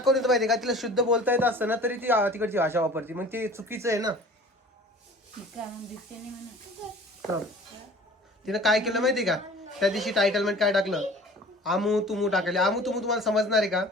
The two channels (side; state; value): both; normal; correlation 0.46